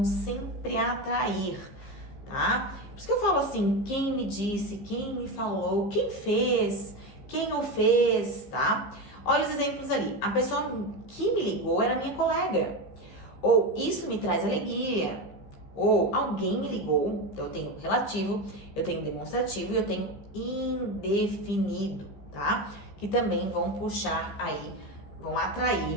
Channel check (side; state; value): right; late; 15 ms